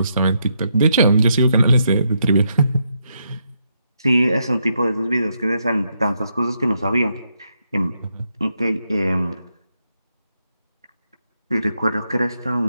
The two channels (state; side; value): inverted; both; correlation -0.79